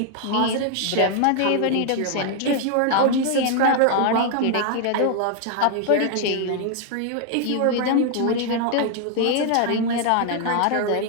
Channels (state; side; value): different; both; correlation 0.00